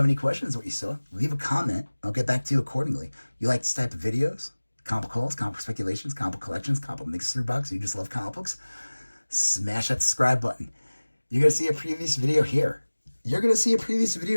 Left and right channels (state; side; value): inverted; both; correlation -1.00